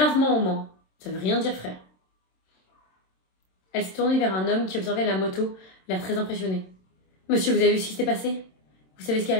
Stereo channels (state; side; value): late; right; 27 ms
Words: au moins. Ça veut rien dire, frère. Elle s'est tournée vers un homme qui observait la moto, l'air très impressionné. Monsieur, vous avez vu ce qui s'est passé? Vous savez ce qui est